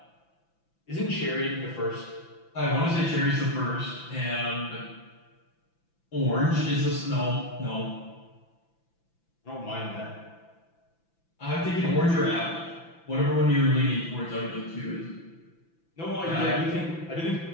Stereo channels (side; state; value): right; late; 5.9 ms